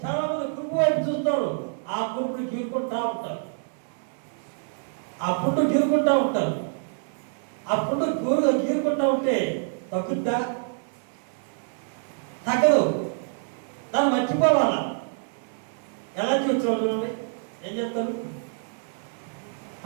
చాలా మంది కురుపు వైపు చూస్తారు. ఆ కురుపుని గీరుకుంటా ఉంటారు. ఆ పుట్టు గీరుకుంటా ఉంటారు. ఆ పుట్టు గీరుకుంటా ఉంటే తగ్గుద్దా? తగ్గదు. దాన్ని మర్చిపోవాలా? ఎలా చూసిన వాళ్ళు ఏం చేస్తారు?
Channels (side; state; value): left; silent; digital silence